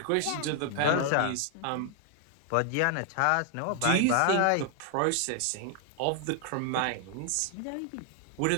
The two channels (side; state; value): both; different; correlation 0.00